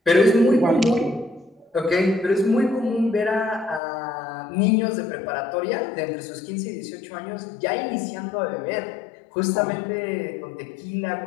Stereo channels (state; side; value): drops out; right; at 3.8 s